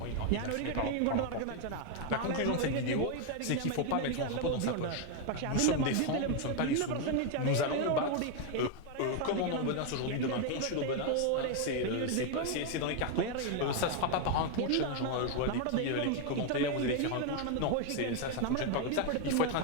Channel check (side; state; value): both; different; correlation 0.01